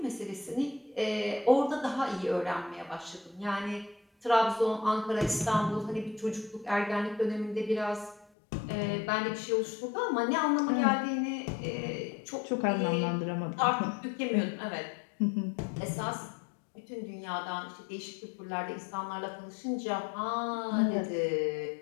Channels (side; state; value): right; drops out; at 8.2 s